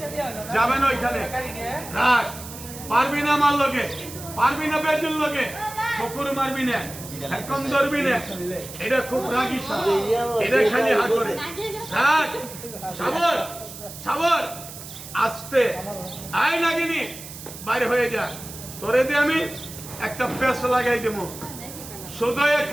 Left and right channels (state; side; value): noise; right; hiss, 13 dB below the sound